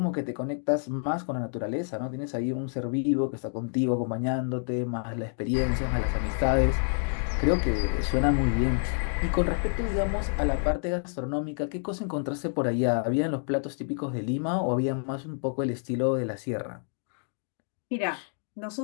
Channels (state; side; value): silent; right; 59 dB below the other